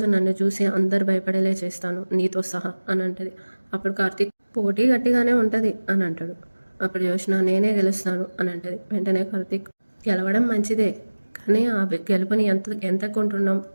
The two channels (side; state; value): both; inverted; correlation -1.00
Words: నన్ను చూసి అందరు భయపడేలే చేస్తాను నీతో సహా అని అంటది. అప్పుడు కార్తీక్ పోటీ గట్టిగానే ఉంటుంది అని అంటాడు. అప్పుడు జోష్న నేనే గెలుస్తాను అని అంటది. వెంటనే కార్తీక్ గెలవడం మంచిదే, కానీ ఆ గెలుపుని ఎంత కొంటున్నాం